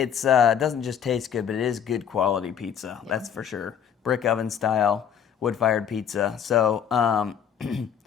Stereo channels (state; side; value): quieter; right; 8.3 dB